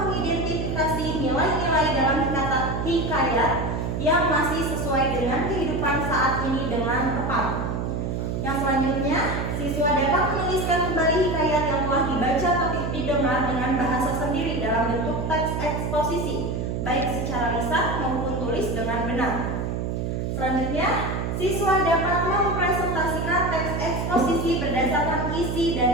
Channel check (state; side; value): noise; right; hum, 2 dB below the sound